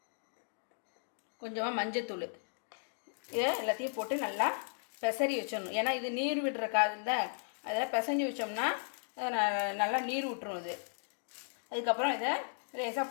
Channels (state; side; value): silent; right; digital silence